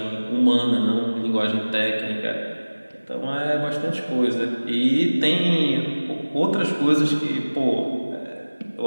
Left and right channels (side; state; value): both; inverted; correlation -1.00